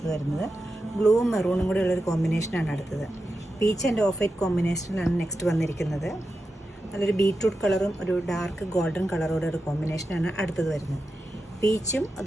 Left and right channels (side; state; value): both; normal; correlation 0.90